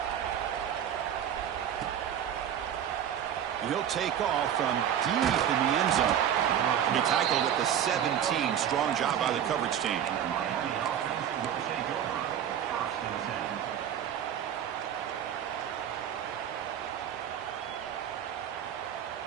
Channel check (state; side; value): quieter; left; 9.6 dB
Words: And he'll take off from deep in the end zone. He tackled at the 17. Strong job by the coverage team.